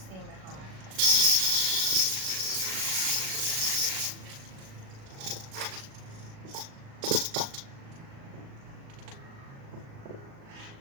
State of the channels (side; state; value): left; late; 37 ms